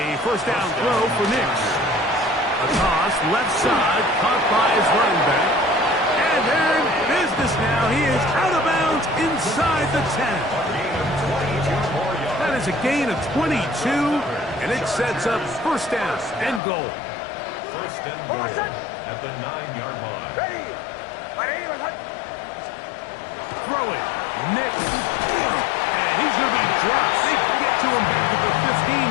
1st down throw for Nix. A toss left side, caught by his running back. And they're in business now. He is out of bounds inside the 10. That is a gain of 22, and it sets up 1st down and goal. 1st and goal at the 9-yard line. Throwing, Nix. And he's going to be dropped. They get to him back at the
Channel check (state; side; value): drops out; right; at 16.6 s